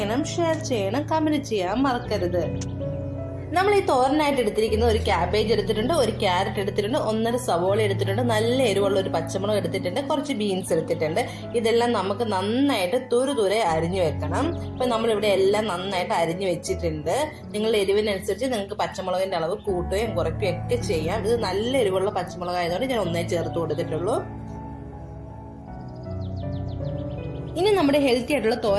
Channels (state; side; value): identical; both; correlation 1.00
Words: ഷെയർ ചെയ്യണം, കമന്റ് ചെയ്യാൻ മറക്കരുത്. നമ്മൾ ഈ തോരനായിട്ട് എടുത്തിരിക്കുന്നത് ഒരു ക്യാബേജ് എടുത്തിട്ടുണ്ട്, ഒരു ക്യാരറ്റ് എടുത്തിട്ടുണ്ട്, 1.5 സവോള എടുത്തിട്ടുണ്ട്, നല്ല എരിവുള്ള ഒരു പച്ചമുളക് എടുത്തിട്ടുണ്ട്, കുറച്ച് ബീൻസ് എടുത്തിട്ടുണ്ട്. ഇതെല്ലാം നമുക്ക് നന്നായിട്ട് തുരുതുരെ അരിഞ്ഞു വെക്കണം. ഇപ്പൊ നമ്മളിവിടെ എല്ലാം നന്നായിട്ട് അരിഞ്ഞു വെച്ചിട്ടുണ്ട്. നിങ്ങളുടെ എരിവിനനുസരിച്ച് നിങ്ങൾക്ക് പച്ചമുളകിന്റെ അളവ് കൂട്ടുകയും കുറയ്ക്കുകയും ഒക്കെ ചെയ്യാം. ഇത് നല്ല എരിവുള്ള പച്ചമുളക് ആയതുകൊണ്ട് ഞാൻ ഒന്നേ ചേർത്ത് കൊടുത്തിട്ടുള്ളൂ. ഇനി നമ്മുടെ ഹെൽത്തി ആയിട്ടുള്ള